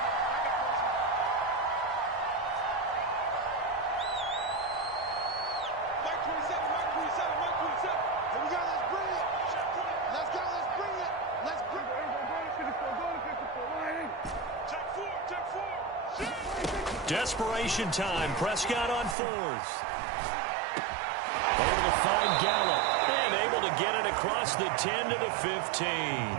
Desperation time. Prescott on fourth. Able to find Gallup. And able to get it across the 10 to the 15.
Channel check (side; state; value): left; drops out; at 19.2 s